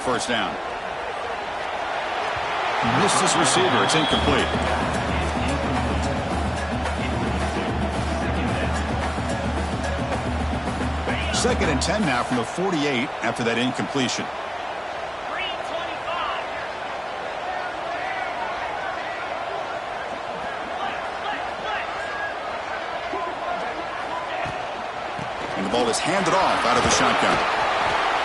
down. Missed his receiver. It's incomplete. Second and 10 now from the 48 after that incompletion. And the ball is handed off out of the shotgun.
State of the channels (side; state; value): both; identical; correlation 1.00